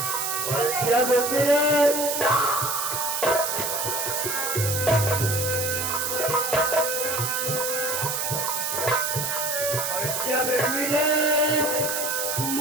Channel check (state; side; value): noise; right; hiss, 1 dB below the sound